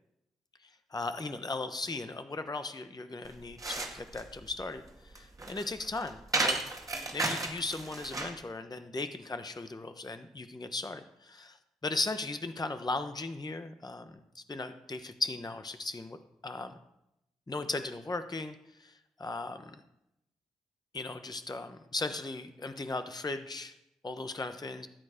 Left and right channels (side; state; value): both; normal; correlation 0.57